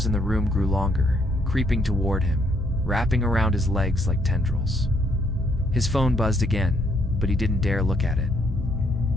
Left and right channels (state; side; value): normal; both; correlation 0.71